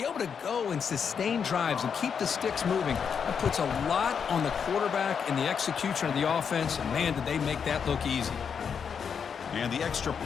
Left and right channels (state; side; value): quieter; right; 6.8 dB